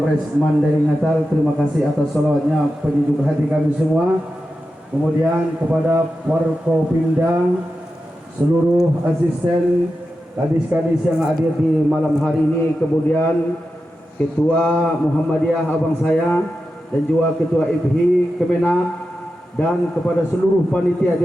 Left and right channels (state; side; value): normal; both; correlation 0.91